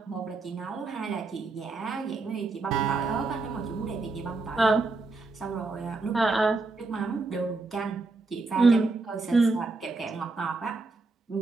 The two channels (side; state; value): left; quieter; 3.6 dB